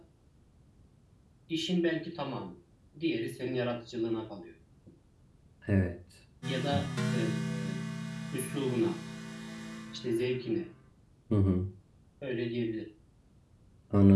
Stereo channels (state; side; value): identical; both; correlation 1.00